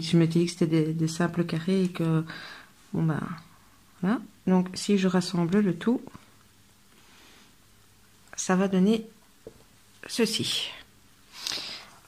dit que c'était des simples carrés et que, bon, bah, voilà. Donc, si je rassemble le tout, ça va donner ceci.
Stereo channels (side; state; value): both; identical; correlation 1.00